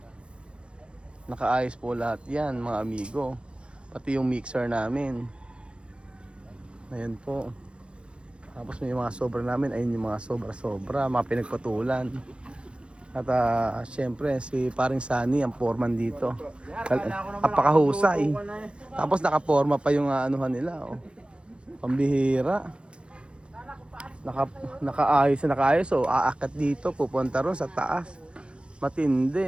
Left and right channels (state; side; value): late; left; 0.057 ms